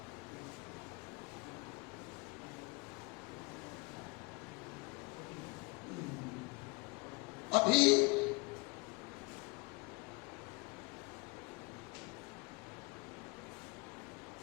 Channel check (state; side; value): quieter; right; 28.0 dB